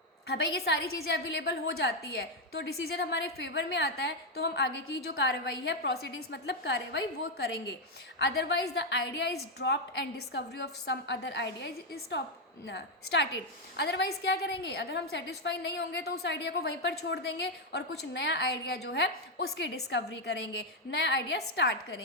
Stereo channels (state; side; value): normal; both; correlation 0.03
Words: हाँ भाई ये सारी चीज़ें अवेलेबल हो जाती है तो डिसीजन हमारे फेवर में आता है, तो हम आगे की जो कार्रवाई है, प्रोसीडिंग्स मतलब कार्रवाई, वो करेंगे। Otherwise the idea is dropped and discovery of some other idea is started. Otherwise क्या करेंगे, अगर हम सेटिस्फाई नहीं होंगे तो उस आइडिया को वहीं पर छोड़ देंगे और कुछ नया आइडिया जो है उसकी डिस्कवरी करेंगे, नया आइडिया स्टार्ट